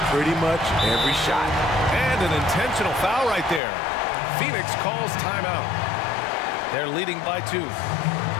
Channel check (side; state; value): right; drops out; at 3.6 s